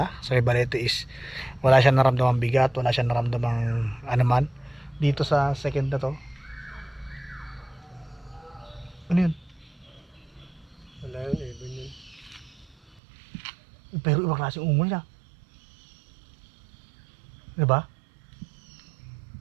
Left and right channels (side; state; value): left; drops out; at 13.0 s